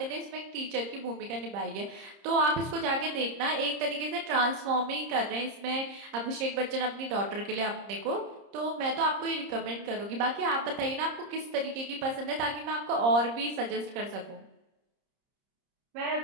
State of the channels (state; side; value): late; left; 30 ms